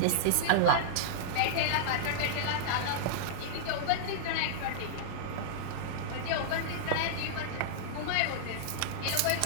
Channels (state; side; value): different; both; correlation -0.02